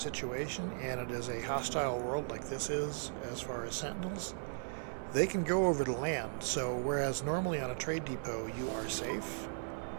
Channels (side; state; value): left; silent; digital silence